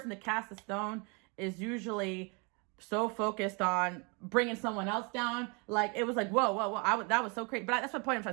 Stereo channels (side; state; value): left; quieter; 32.2 dB